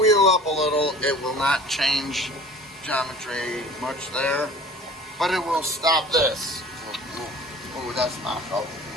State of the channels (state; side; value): normal; both; correlation 0.44